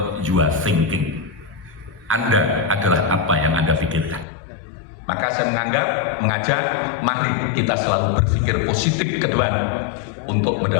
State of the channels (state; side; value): drops out; right; at 4.2 s